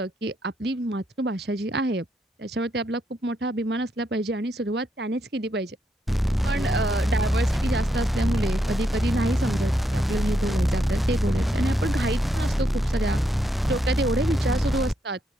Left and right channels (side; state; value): both; normal; correlation 0.79